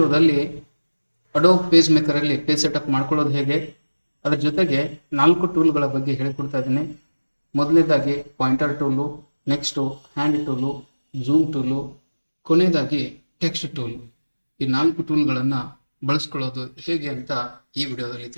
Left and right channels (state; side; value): inverted; both; correlation -1.00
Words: ಅಡೋಬ್ ಪೇಜ್ ಮೇಕರಲ್ಲಿ ಪೇಜ್ ಸೆಟಪ್ ಮಾಡ್ಕೊಳ್ಳೋದು ಹೇಗೆ, ಅದರ ಜೊತೆಗೆ 4 ಟೂಲ್ಗಳ ಬಗ್ಗೆ ಹೇಳಿಕೊಡ್ತಾ ಇದ್ದೀನಿ. ಮೊದಲನೇದಾಗಿ pointer tool, next hand tool, zoom tool, ಕೊನೆಯದಾಗಿ ಟೆಕ್ಸ್ಟ್ ಟೂಲ್. ಈ 4 ಟೂಲ್ಗಳನ್ನು ಬಳಸ್ಕೊಳ್ಳೋದು ಹೇಗೆ ಅಂತ ಈ ವಿಡಿಯೋದಲ್ಲಿ